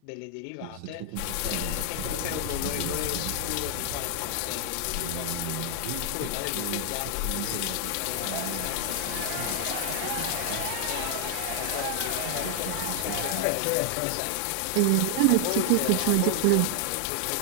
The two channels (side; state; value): both; different; correlation 0.00